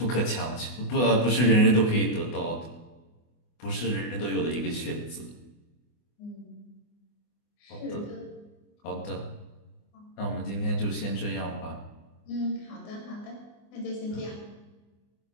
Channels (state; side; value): late; right; 24 ms